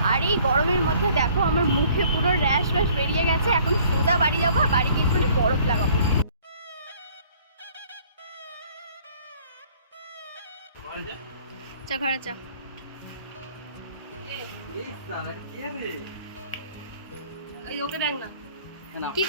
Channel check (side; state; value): both; inverted; correlation -0.57